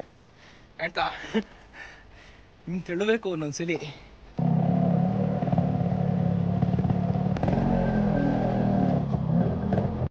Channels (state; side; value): identical; both; correlation 1.00